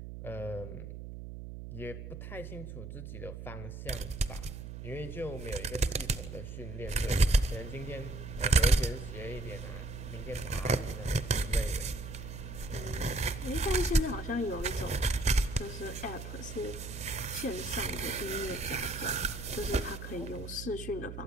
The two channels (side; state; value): right; noise; hum, 9 dB below the sound